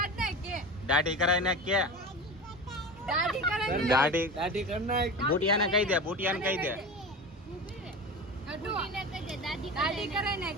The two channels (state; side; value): normal; both; correlation 0.29